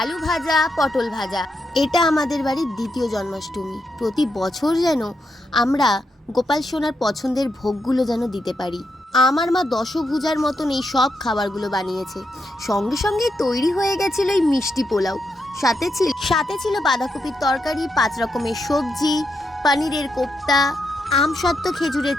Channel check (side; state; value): both; normal; correlation 0.83